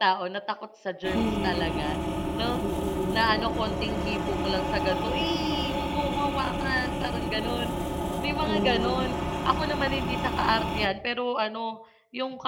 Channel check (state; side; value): identical; both; correlation 1.00